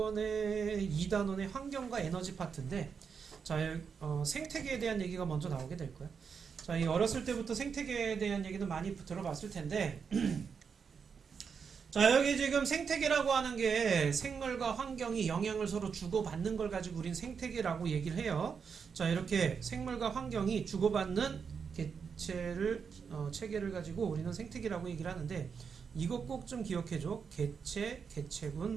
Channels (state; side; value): quieter; left; 6.2 dB